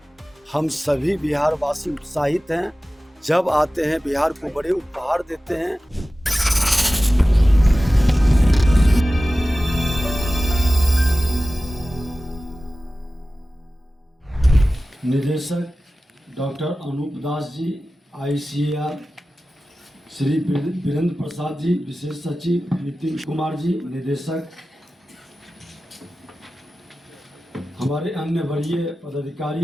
हम सभी बिहार वासी उत्साहित हैं। जब आते हैं बिहार को बड़े उपहार देते हैं। निदेशक डॉक्टर अनूप दास जी, ICAR, श्री वीरेंद्र प्रसाद जी, विशेष सचिव नितिन कुमार जी, निदेशक, हमारे अन्य वरीय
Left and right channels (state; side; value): normal; both; correlation 0.96